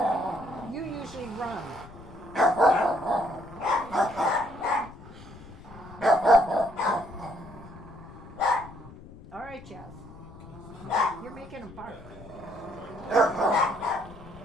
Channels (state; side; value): noise; left; rumble, 18 dB below the sound